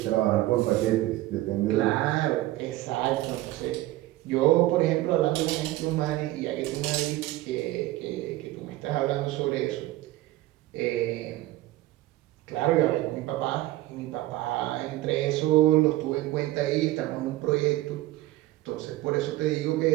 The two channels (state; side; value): quieter; left; 16.8 dB